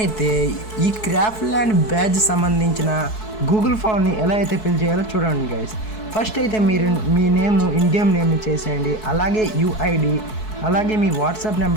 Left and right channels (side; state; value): right; late; 4.6 ms